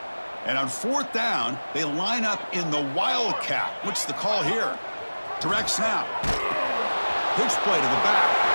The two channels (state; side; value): inverted; both; correlation -1.00